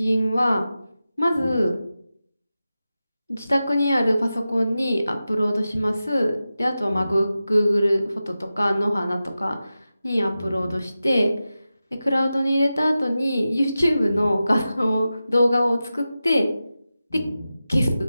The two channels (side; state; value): both; inverted; correlation -0.93